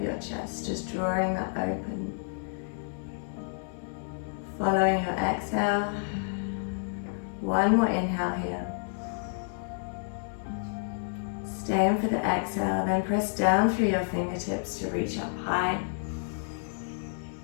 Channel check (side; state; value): right; silent; digital silence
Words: your chest, just drawing that open. Following your exhale. One more inhale here. Staying for the exhale, then press down through your fingertips to reach up high.